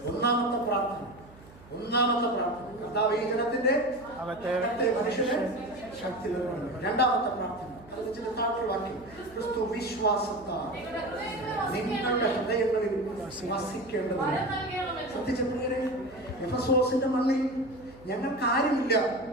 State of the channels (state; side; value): noise; right; hum, 22 dB below the sound